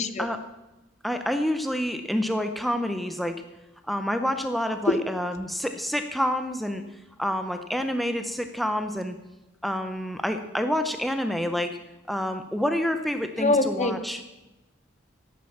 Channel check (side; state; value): both; normal; correlation 0.74